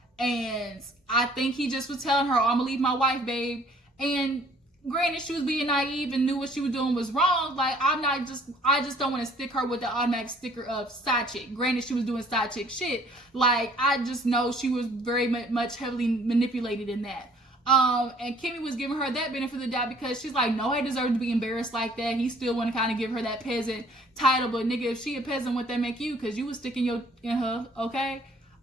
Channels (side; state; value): both; normal; correlation 0.58